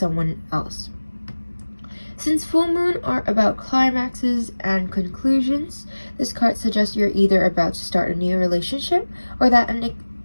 else. Since full moon are about climaxes and conclusions, this card suggests you're either about to start a new relationship or that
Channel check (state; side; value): inverted; both; correlation -1.00